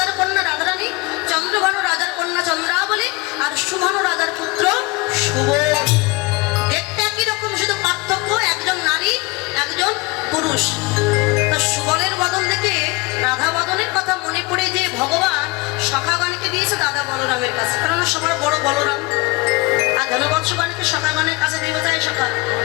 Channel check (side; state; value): right; quieter; 24.7 dB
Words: কন্যা রাধারানী, চন্দ্রভানু রাজার কন্যা চন্দ্রাবলী, আর সুভানু রাজার পুত্র সুবল। দেখতে একই রকম, শুধু পার্থক্য একজন নারী একজন পুরুষ। তা সুবলের বদন দেখে রাধা বদনের কথা মনে পড়ে যে ভগবান সখাগণকে দিয়েছে দাদা বলরামের কাছে, কারণ সবার বড় বলরাম। আর ধনবৎসগণকে সখাগণের কাছে দিয়ে যায়, সখা